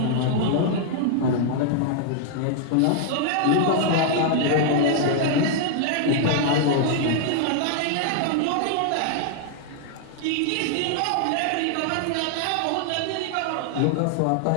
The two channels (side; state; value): both; different; correlation 0.00